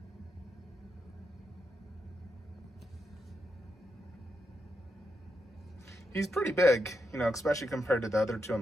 He's pretty big, you know, especially compared to the other two on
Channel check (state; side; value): normal; both; correlation 0.84